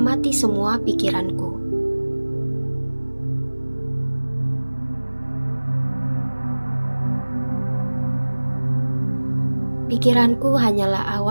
semua pikiranku. Pikiranku hanyalah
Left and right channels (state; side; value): inverted; both; correlation -1.00